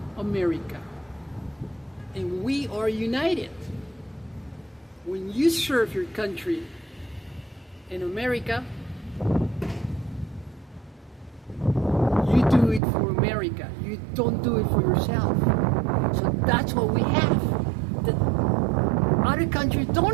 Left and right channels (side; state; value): left; drops out; at 12.8 s